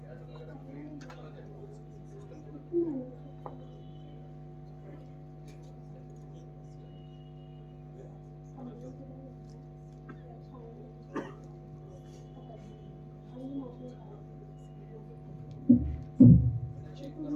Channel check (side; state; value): both; identical; correlation 1.00